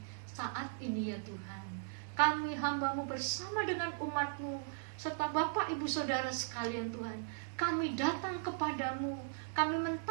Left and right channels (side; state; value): left; silent; digital silence